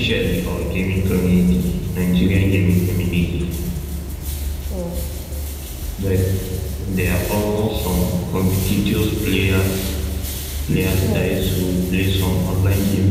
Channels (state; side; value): identical; both; correlation 1.00